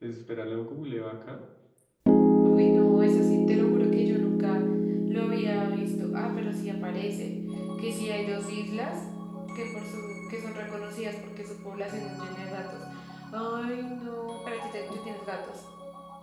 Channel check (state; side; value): identical; both; correlation 1.00